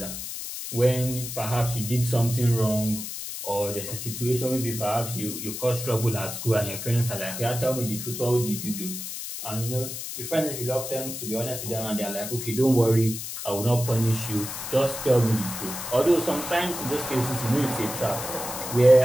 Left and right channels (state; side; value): noise; left; hiss, 7 dB below the sound